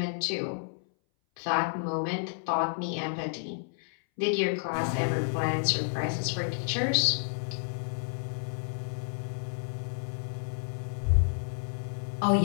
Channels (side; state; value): right; silent; 57 dB below the other